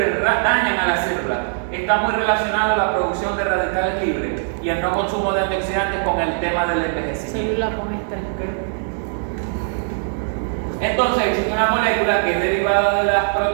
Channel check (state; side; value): silent; left; digital silence